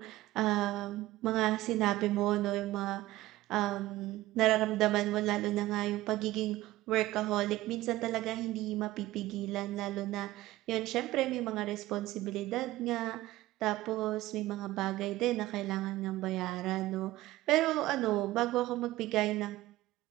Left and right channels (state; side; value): quieter; left; 16.8 dB